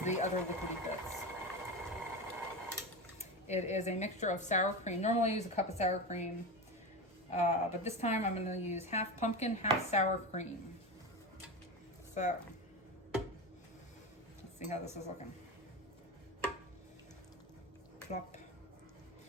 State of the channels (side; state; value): both; normal; correlation 0.22